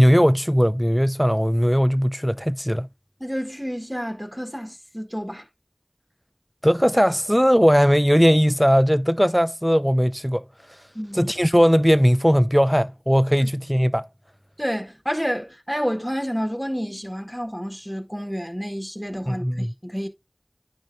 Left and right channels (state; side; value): identical; both; correlation 1.00